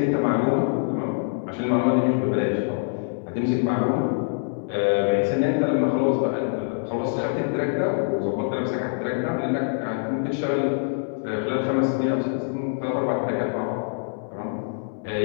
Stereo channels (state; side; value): silent; right; digital silence